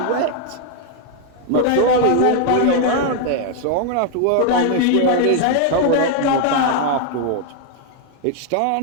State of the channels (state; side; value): different; both; correlation 0.00